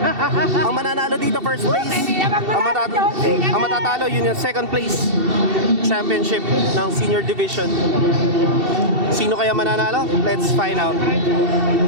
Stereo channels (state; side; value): late; left; 2.7 ms